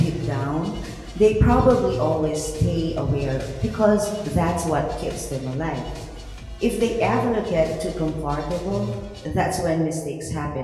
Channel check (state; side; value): identical; both; correlation 1.00